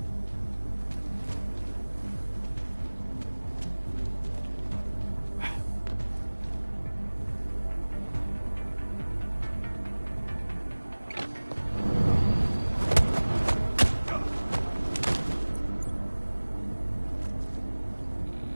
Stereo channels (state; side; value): inverted; both; correlation -1.00